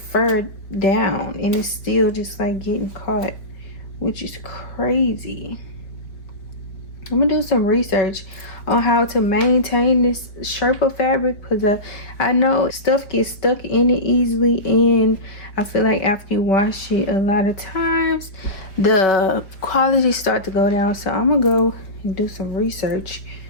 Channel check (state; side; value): late; right; 4.6 ms